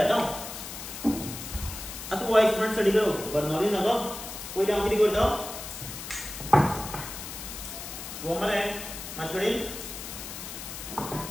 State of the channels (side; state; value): left; noise; hiss, 9 dB below the sound